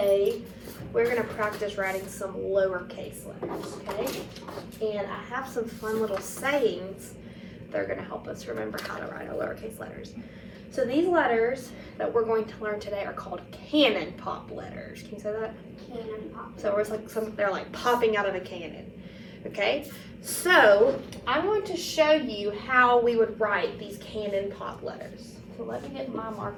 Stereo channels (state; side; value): identical; both; correlation 1.00